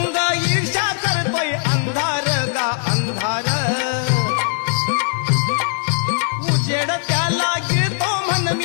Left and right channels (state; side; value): silent; right; digital silence